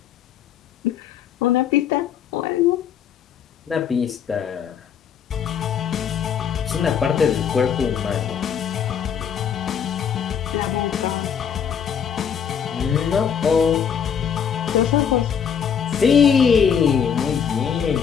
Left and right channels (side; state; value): right; quieter; 7.7 dB